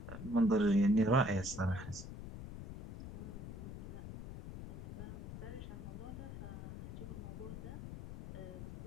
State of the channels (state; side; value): noise; left; rumble, 9 dB below the sound